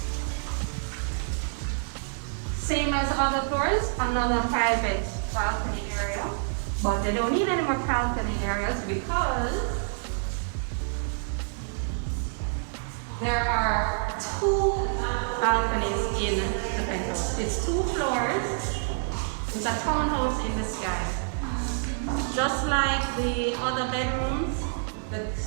Same as other floors, another private balcony area. But they don't need any more balcony areas because there are 2 balconies in the penthouse. It's 2 floors. It's a townhouse in the sky. Just like the other bedrooms, the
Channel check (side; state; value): left; silent; digital silence